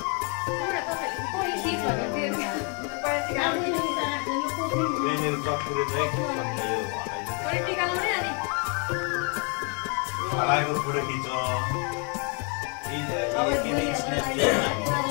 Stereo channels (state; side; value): quieter; right; 36.6 dB